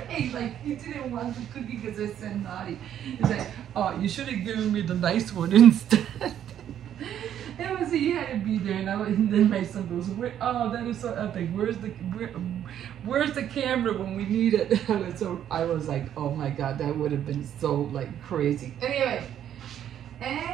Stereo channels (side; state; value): left; quieter; 10.3 dB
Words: like he didn't want the cookie because it said naughty. He's like, oh, you should have given me the nice one instead. It was, he had to be there, and then my son goes, oh, that is so epic. Where's the camera when we need it? So I was like, oh my God, that would have been so like crazy.